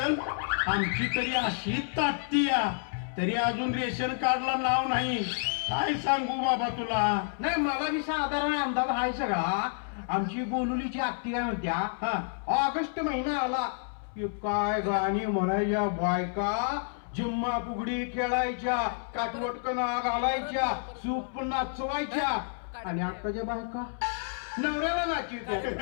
आमची तरी अशी ताटती तरी अजून रेशन कार्डला नाव नाही. काय सांगू बाबा तुला. नाही मला बी साधारण अंदाज आहे सगळा. आमची बोलुलीची आत्ती काय म्हणत्या, हा ऑगस्ट महिना आला की काय गाणी म्हणायच्या बायका, जिम्मा फुगडी खेळायच्या, काटवटकना घालायच्या, सूप नाचवायच्या. आणि आताच्या बायका नवऱ्याला नाचीत्या.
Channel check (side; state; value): right; silent; 58 dB below the other